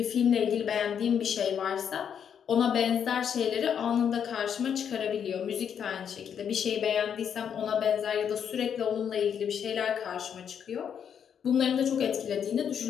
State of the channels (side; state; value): right; quieter; 8.1 dB